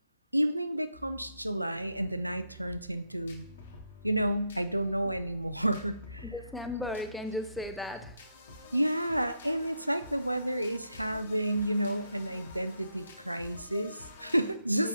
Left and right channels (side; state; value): both; inverted; correlation -0.82